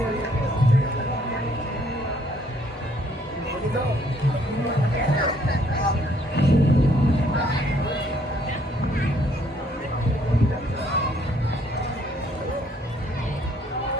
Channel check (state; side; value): normal; both; correlation 0.65